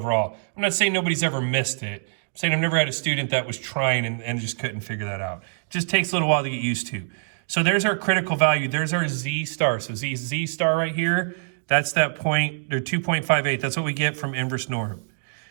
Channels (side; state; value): left; silent; digital silence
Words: I'm not saying nobody's ever missed it. I'm saying I've never had a student that was trying and just couldn't figure that out. It just takes a little while to get used to. So there's our critical value. There's our Z star. So Z star right here, that's that point, or 2.58. That's what we get from inverse norm.